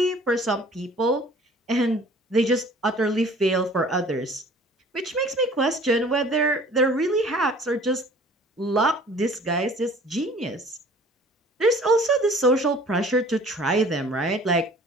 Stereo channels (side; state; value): both; normal; correlation 0.50